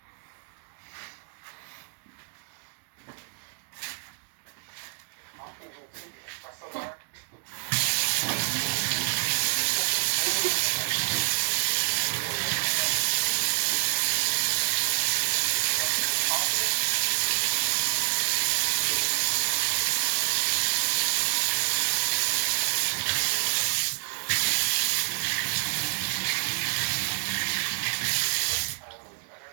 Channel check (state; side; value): silent; left; digital silence